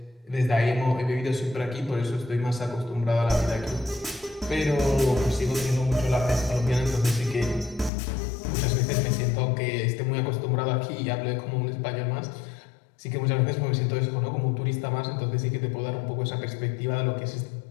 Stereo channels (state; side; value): drops out; right; at 7.9 s